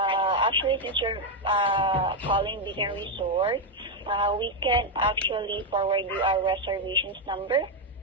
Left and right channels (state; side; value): normal; both; correlation 0.03